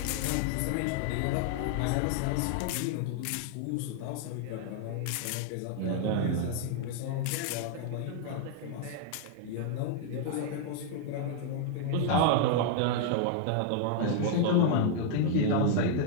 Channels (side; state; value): both; different; correlation 0.00